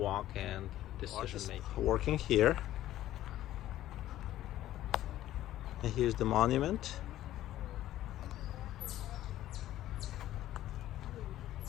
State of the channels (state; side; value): quieter; right; 13.7 dB